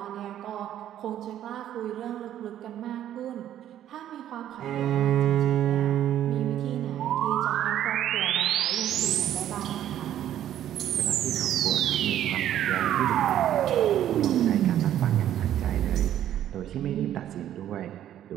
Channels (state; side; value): quieter; left; 11.4 dB